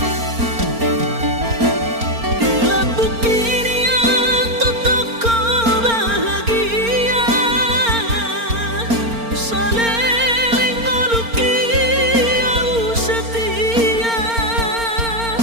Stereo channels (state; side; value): late; left; 4.4 ms